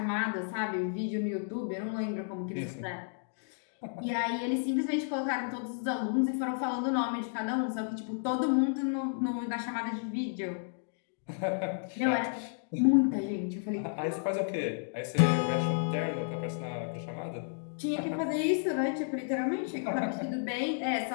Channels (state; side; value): silent; right; digital silence